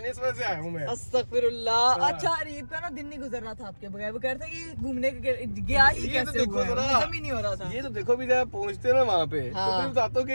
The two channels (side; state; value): both; inverted; correlation -1.00